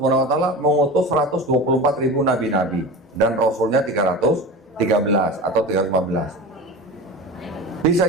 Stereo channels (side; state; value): both; normal; correlation 0.30